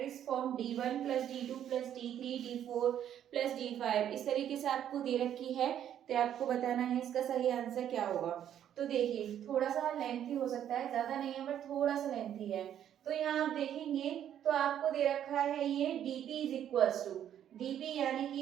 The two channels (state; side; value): quieter; left; 10.2 dB